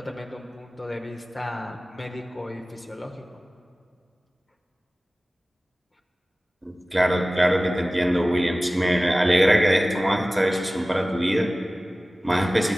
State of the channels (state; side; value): normal; both; correlation 0.97